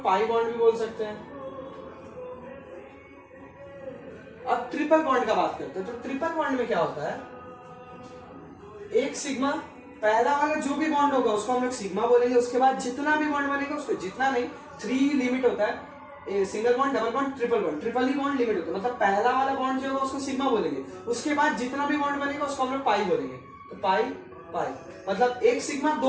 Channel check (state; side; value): identical; both; correlation 1.00